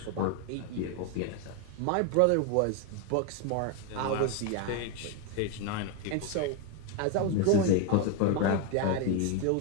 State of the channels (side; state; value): both; different; correlation 0.02